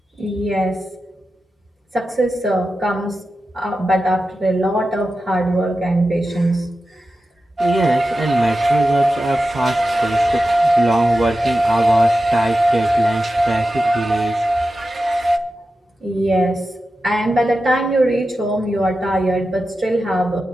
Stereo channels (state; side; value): normal; both; correlation 0.92